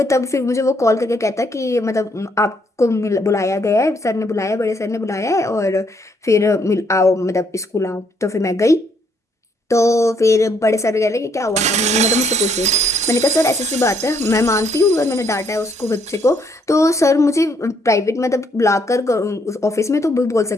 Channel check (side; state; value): both; normal; correlation 0.70